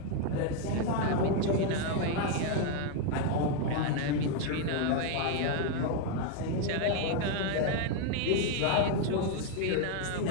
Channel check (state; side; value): different; both; correlation 0.00